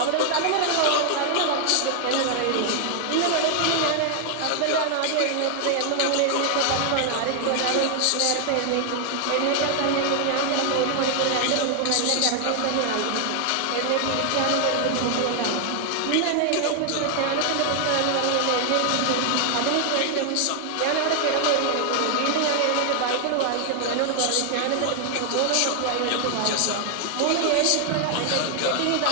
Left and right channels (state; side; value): different; both; correlation 0.00